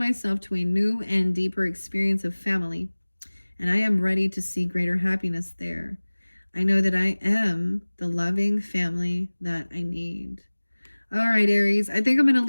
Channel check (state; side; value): inverted; both; correlation -1.00